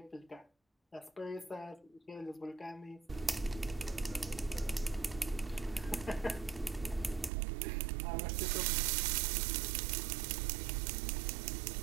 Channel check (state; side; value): drops out; left; at 7.3 s